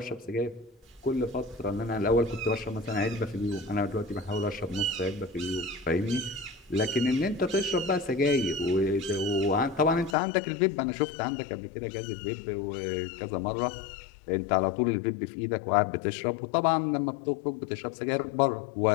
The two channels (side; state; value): right; drops out; at 10.2 s